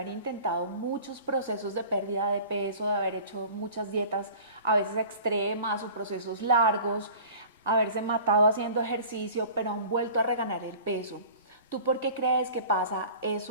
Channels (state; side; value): inverted; both; correlation -0.43